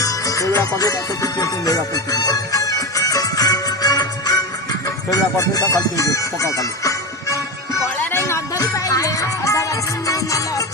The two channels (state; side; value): normal; both; correlation 0.20